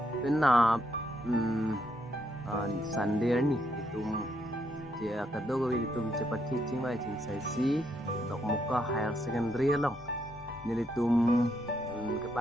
penap Sunday ni itum dia kado gawi itum cepat teaching mai cing sesi dok muka higher secondary long nili tum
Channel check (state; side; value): normal; both; correlation 0.76